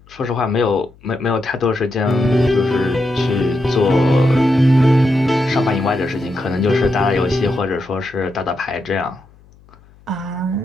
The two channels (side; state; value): left; noise; hum, 27 dB below the sound